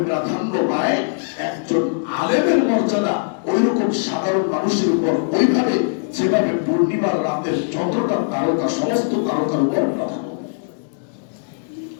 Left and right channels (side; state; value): right; silent; digital silence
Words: প্রাধান্য পায়, একজন আলেমের মর্যাদা ওই রকম সাধারণ মানুষের উপর ওইভাবে যেভাবে পূর্ণিমার রাতের চন্দ্রটা তারকা সমস্ত তারকার উপর প্রাধান্য।